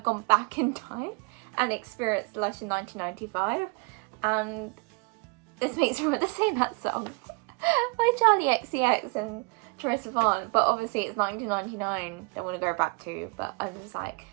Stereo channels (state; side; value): quieter; left; 31.8 dB